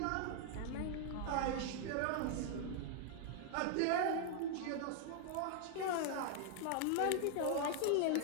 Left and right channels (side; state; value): both; different; correlation 0.00